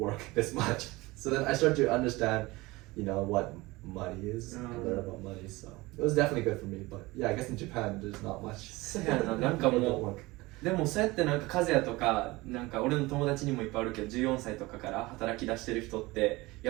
this much. So then I start to understand, what money is and learn about money. So it was definitely good for me. But yeah, I guess in Japan, there's not much. そうやな、なんか People も don't う work. でもそうやってなんか和也とかなんか俺の友達にもいっぱいあるけど14歳とかから働き出してる人って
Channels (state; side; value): quieter; left; 21.3 dB